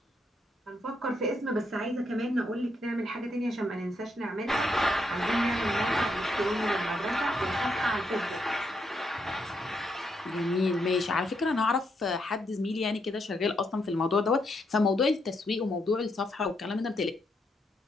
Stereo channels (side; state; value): both; normal; correlation 0.78